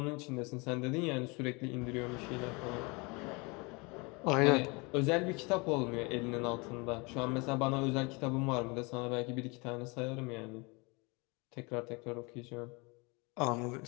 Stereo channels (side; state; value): right; quieter; 28.4 dB